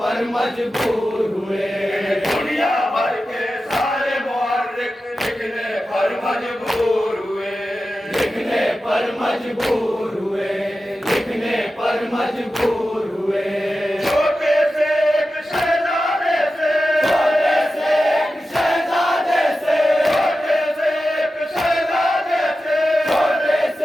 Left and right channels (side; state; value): both; normal; correlation 0.93